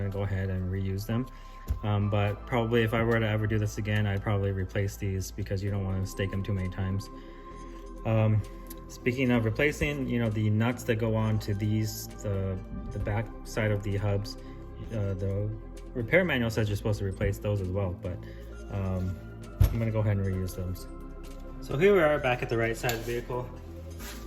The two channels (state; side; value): identical; both; correlation 1.00